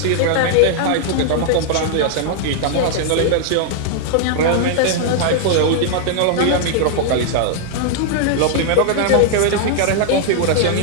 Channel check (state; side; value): different; both; correlation -0.01